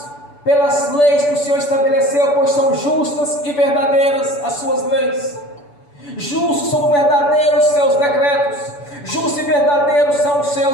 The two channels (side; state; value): right; late; 6.9 ms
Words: pelas leis que o Senhor estabeleceu, pois são justas e verdadeiras as suas leis. Justos são verdadeiros seus decretos, justos e verdadeiros são os